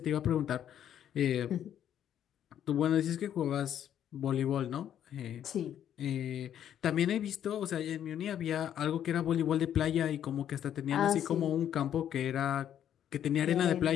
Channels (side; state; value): right; quieter; 10.1 dB